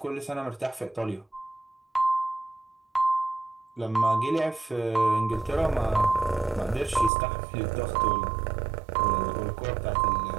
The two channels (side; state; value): left; drops out; at 7.1 s